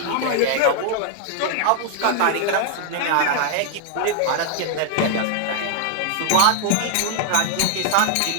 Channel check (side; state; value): both; different; correlation 0.00